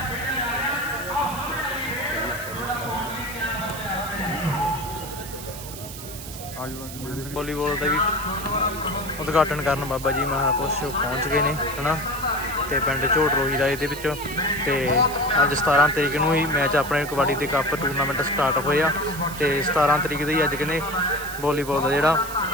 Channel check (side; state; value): right; noise; hiss, 12 dB below the sound